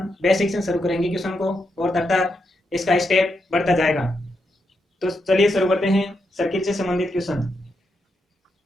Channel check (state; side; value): normal; both; correlation 0.82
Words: बेसिक से शुरू करेंगे क्वेश्चन को और तब तक इसका स्टेप बढ़ता जाएगा। तो चलिए शुरू करते हैं सर्किल से संबंधित क्वेश्चन।